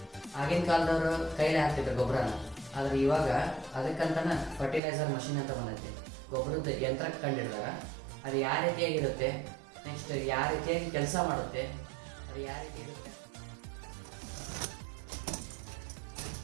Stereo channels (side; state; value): left; drops out; at 4.8 s